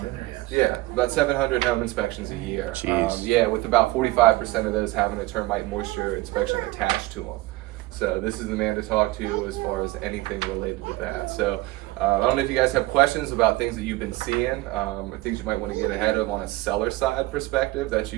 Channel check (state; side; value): quieter; left; 19.4 dB